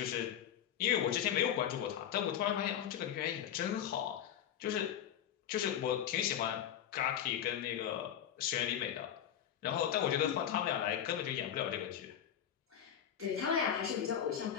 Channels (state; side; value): quieter; right; 9.6 dB